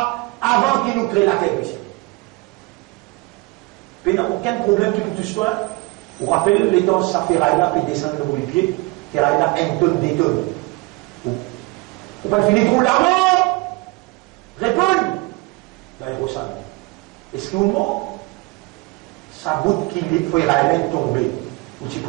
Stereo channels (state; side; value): quieter; left; 24.9 dB